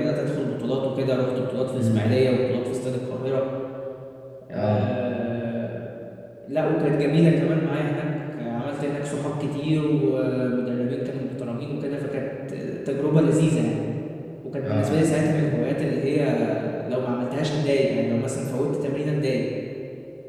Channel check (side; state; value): both; identical; correlation 1.00